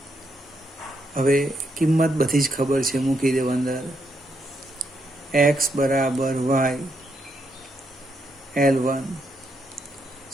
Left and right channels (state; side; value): normal; both; correlation 0.78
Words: હવે કિંમત બધી જ ખબર છે, મૂકી દેવ અંદર. એક્સ બરાબર વાય L1